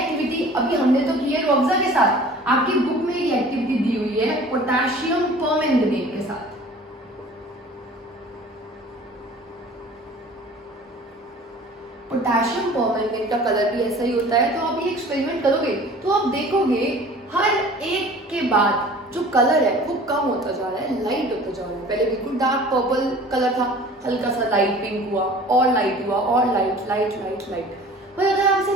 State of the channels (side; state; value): both; normal; correlation 0.46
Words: अभी हमने तो की है रूह अफ़ज़ा के साथ, आपकी बुक में ये एक्टिविटी दी हुई है पोटेशियम परमैंगनेट के साथ। पोटेशियम परमैंगनेट का कलर भी ऐसा ही होता है। तो आप ये एक्सपेरिमेंट करोगे तो आप देखोगे हर एक के बाद जो कलर है वो कम होता जा रहा है, लाइट होता जा रहा है। पहले बिल्कुल डार्क पर्पल कलर था, हल्का सा लाइट पिंक हुआ, और लाइट हुआ, और लाइट लाइट लाइट लाइट। पर अगर आप इसे